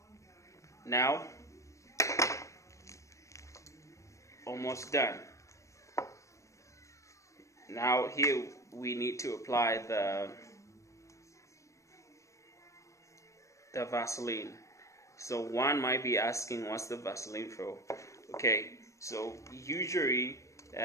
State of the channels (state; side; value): late; right; 0.15 ms